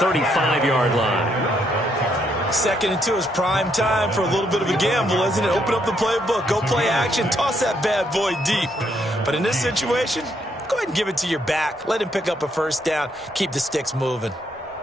line. 2nd and 2 is prime time for a little bit of a gamble, isn't it? Open up the playbook, go play action, toss that bad boy deep. But in this situation, go ahead and give it to your back. Let him pick up a 1st down. Keep the sticks moving.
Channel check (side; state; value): both; normal; correlation 0.74